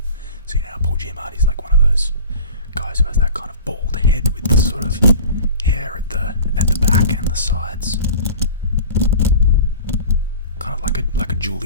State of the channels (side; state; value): both; inverted; correlation -0.40